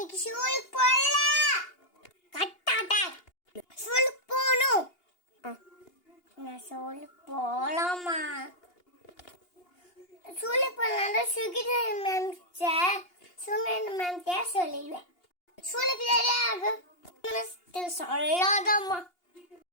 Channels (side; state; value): right; late; 2.8 ms